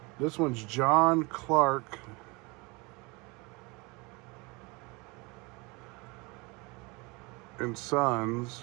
This one's John Clark and Sons,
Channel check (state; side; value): quieter; left; 26.8 dB